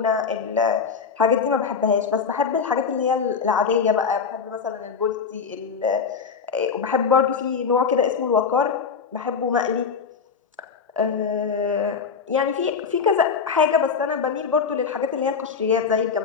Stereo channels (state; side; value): quieter; right; 5.9 dB